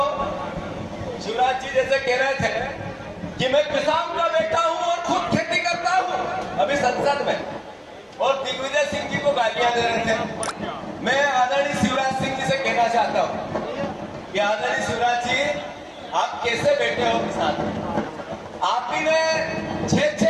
शिवराज जी जैसे कह रहे थे कि मैं किसान का बेटा हूं और खुद खेती करता हूं अभी संसद में, और दिग्विजय सिंह जी को गालियां दे रहे थे। मैं आदरणीय शिवराज सिंह जी से कहना चाहता हूं कि आदरणीय शिवराज जी, आप कैसे बैठे हो किसान? आप ही ने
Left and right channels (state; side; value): identical; both; correlation 1.00